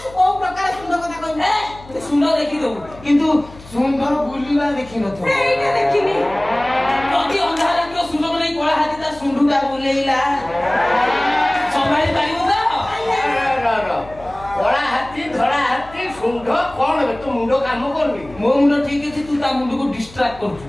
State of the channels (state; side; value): noise; left; hum, 20 dB below the sound